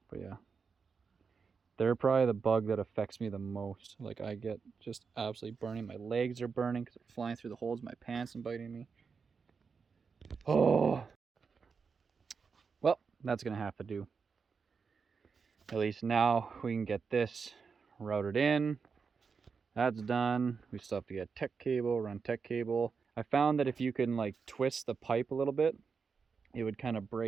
But yeah, they're probably the bug that affects me the most. Like I get just absolutely burning. My legs are burning because they're flying through the holes in my pants and biting me. Oh, well, that's gonna have to do. At least now we can get this routed in. That's done. We still have to get tech cable, run tech cable. I found that if you can like twist the pipe a little bit, it would kind of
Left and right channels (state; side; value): quieter; left; 5.5 dB